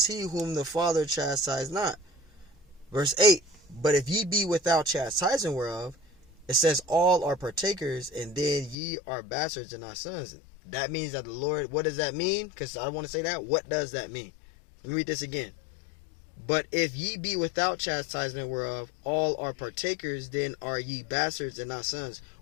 whom the Father chastised not? Verse 8, but if ye be without chastising whereof, it says all are partakers, and then ye are bastards and not sons. That means that the Lord, what does that mean? Because I want to say that. What does that mean? Let me read this again. But if ye be without chastisement whereof all are partakers, then are ye bastards and not sons.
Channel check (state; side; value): drops out; right; at 8.8 s